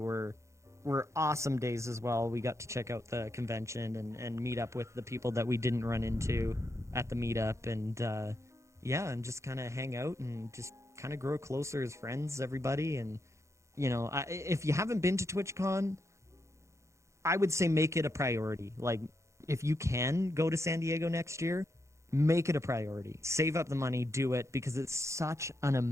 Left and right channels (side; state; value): left; late; 0.14 ms